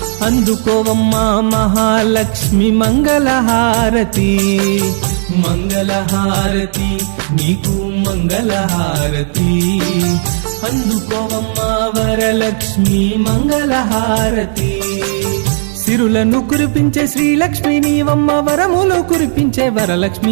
అందుకోవమ్మా మహాలక్ష్మి మంగళహారతి మంగళహారతి నీకు మంగళహారతి అందుకోవమ్మా వరలక్ష్మి మంగళహారతి సిరులను కురిపించే శ్రీలక్ష్మి నీవమ్మ వరములు కురిపించే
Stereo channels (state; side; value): silent; left; digital silence